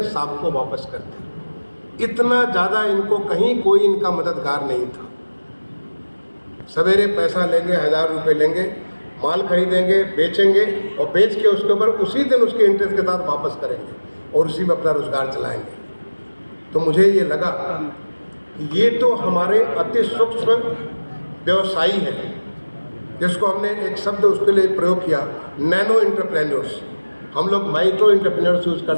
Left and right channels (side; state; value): both; inverted; correlation -1.00